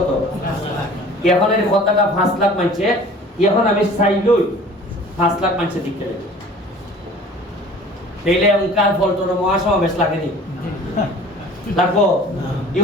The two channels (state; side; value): normal; both; correlation 0.46